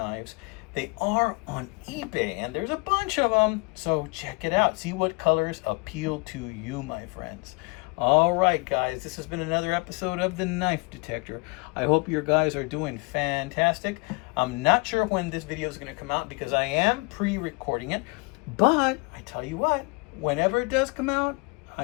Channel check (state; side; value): quieter; right; 29.8 dB